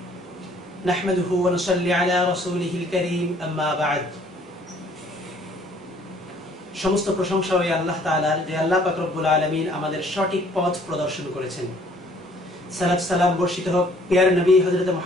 नहमदुहु व नुसल्ली अला रसूलिहिल करीम अम्मा बाद। সমস্ত প্রশংসা ওই আল্লাহ তাআলার যে আল্লাহ পাক রব্বুল আলামিন আমাদের সঠিক পথ প্রদর্শন করেছেন। সালাত সালাম বর্ষিত হোক প্রিয় নবী হযরত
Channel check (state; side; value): normal; both; correlation 0.59